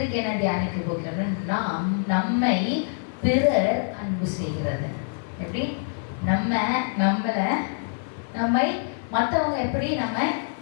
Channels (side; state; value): right; silent; 56 dB below the other